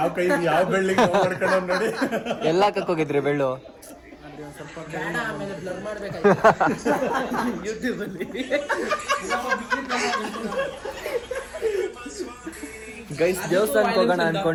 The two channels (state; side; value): identical; both; correlation 1.00